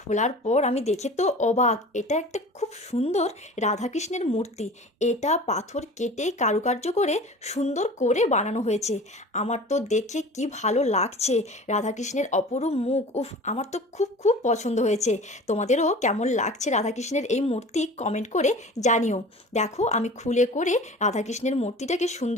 পর আমি দেখে তো অবাক। এটা একটা খুব সুন্দর রাধাকৃষ্ণের মূর্তি। এটা পাথর কেটে কারুকার্য করে সুন্দর করে বানানো হয়েছে। আমার তো দেখে কি ভালো লাগছে। রাধাকৃষ্ণের অপরূপ মুখ, উফ, আমার তো খুব খুব পছন্দ হয়েছে। তোমাদেরও কেমন লাগছে রাধাকৃষ্ণের এই মূর্তি কমেন্ট করে জানিও। দেখো, আমি খুলে করে রাধাকৃষ্ণের মূর্তিটাকে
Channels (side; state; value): both; normal; correlation 0.40